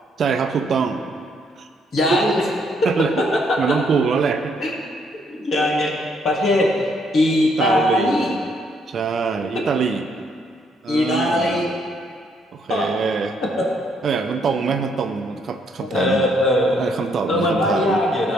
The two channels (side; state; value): both; normal; correlation 0.70